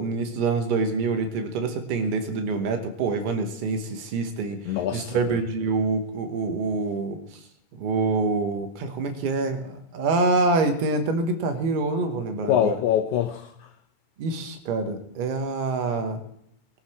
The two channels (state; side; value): late; left; 2.3 ms